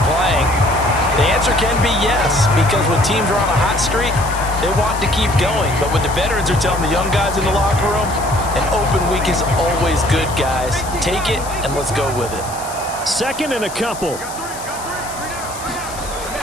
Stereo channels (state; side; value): noise; left; hiss, 13 dB below the sound